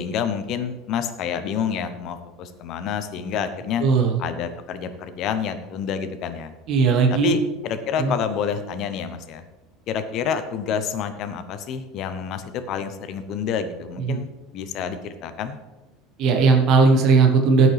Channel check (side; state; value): both; normal; correlation 0.41